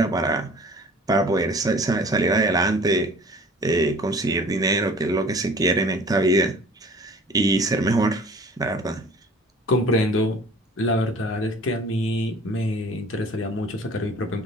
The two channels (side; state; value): both; normal; correlation 0.47